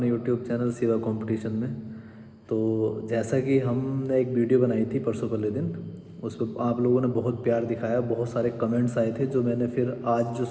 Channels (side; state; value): both; identical; correlation 1.00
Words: YouTube चैनल सिवा कंपटीशन में। तो जैसा कि हमने एक वीडियो बनाई थी परसों पहले दिन, उस पर आप लोगों ने बहुत प्यार दिखाया, बहुत सारे कमेंट्स आए थे। जो मैंने फिर आज जो